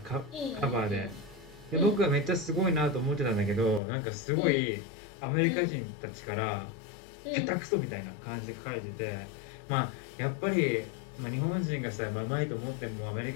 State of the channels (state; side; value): drops out; right; at 3.8 s